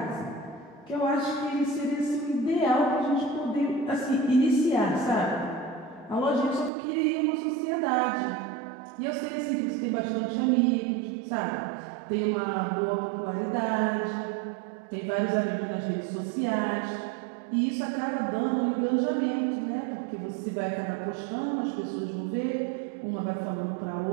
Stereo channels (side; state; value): left; drops out; at 6.7 s